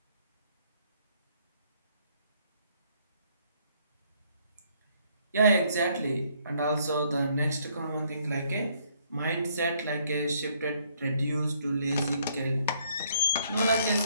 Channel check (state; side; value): inverted; both; correlation -0.67